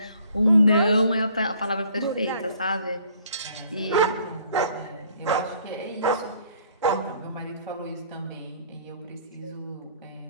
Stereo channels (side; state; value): both; inverted; correlation -0.59